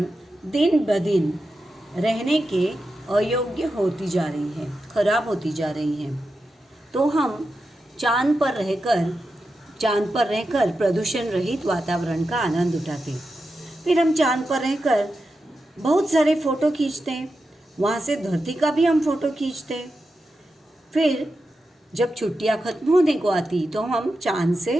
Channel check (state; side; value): normal; both; correlation 0.89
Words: दिन ब दिन रहने के अयोग्य होती जा रही है, खराब होती जा रही है। तो हम चांद पर रहकर प्रदूषण रहित वातावरण का आनंद उठाते। फिर हम चांद पर रहकर बहुत सारे फ़ोटो खींचते हैं, वहाँ से धरती का भी हम फ़ोटो खींचते हैं। फिर जब छुट्टियाँ ख़त्म होने को आती तो हम चांद